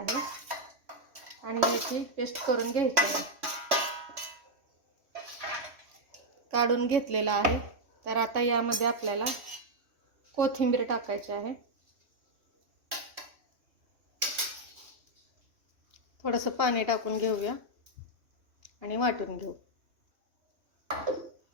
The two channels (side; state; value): left; late; 3.1 ms